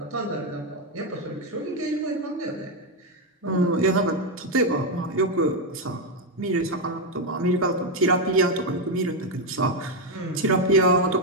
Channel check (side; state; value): both; normal; correlation 0.05